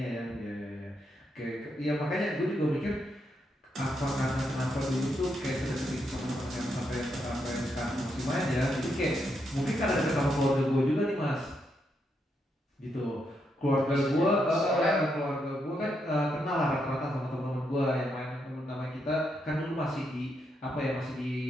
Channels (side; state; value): both; normal; correlation 0.80